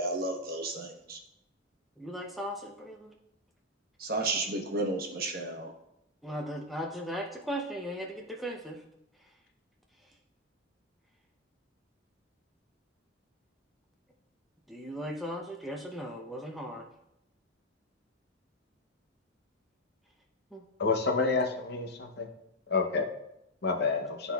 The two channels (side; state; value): both; normal; correlation 0.00